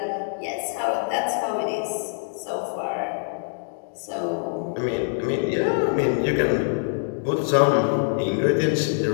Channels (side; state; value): right; silent; digital silence